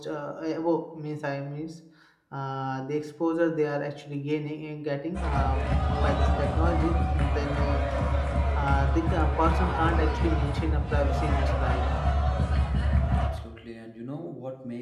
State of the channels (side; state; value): both; identical; correlation 1.00